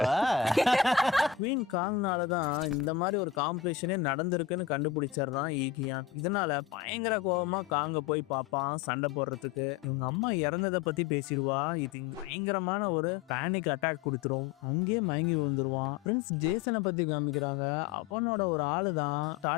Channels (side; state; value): right; quieter; 8.8 dB